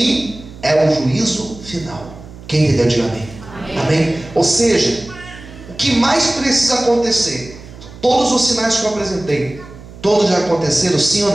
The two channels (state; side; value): noise; right; hum, 18 dB below the sound